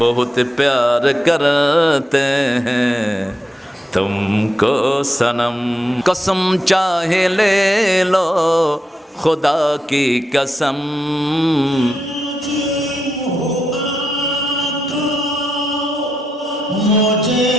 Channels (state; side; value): normal; both; correlation 0.84